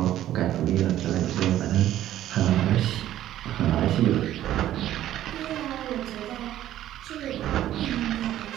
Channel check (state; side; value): quieter; left; 12.8 dB